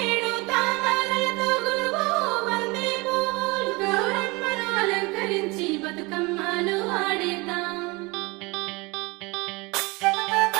తాళాలతో గురువు బంతి పువ్వులు గౌరమ్మను అలంకరించి బతుకమ్మలు ఆడేద్దాం.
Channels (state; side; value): quieter; left; 25.3 dB